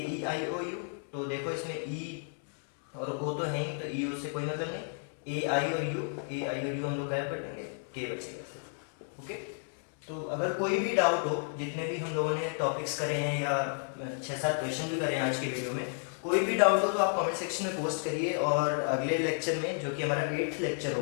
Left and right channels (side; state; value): right; silent; 56 dB below the other